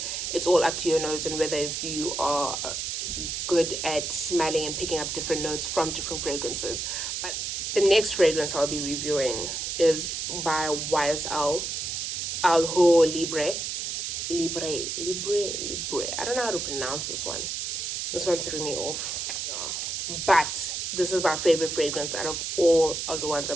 it's all up to your nose and whether if you are good at smelling and picking up different notes from different fragrances. But the next fragrance I'll be reviewing is by YSL L'Homme Libre. Libre. I don't know how to pronounce this one. This one threw me off. Yeah. But this is my favorite fragrance out of all of the ones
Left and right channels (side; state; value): right; noise; hiss, 3 dB below the sound